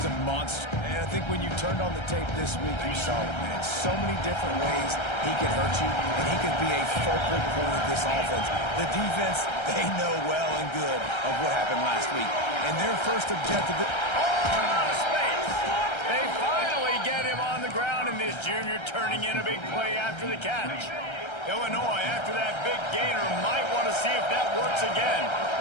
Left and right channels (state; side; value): late; right; 1.3 ms